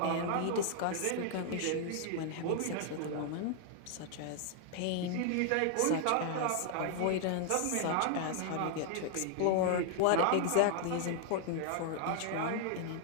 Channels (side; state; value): both; different; correlation 0.00